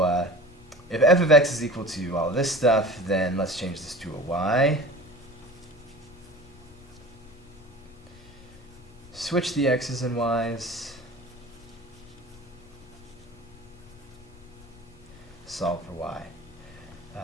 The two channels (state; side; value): noise; left; rumble, 21 dB below the sound